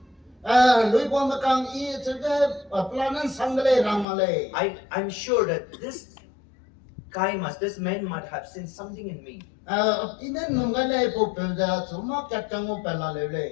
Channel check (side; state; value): right; drops out; at 4.0 s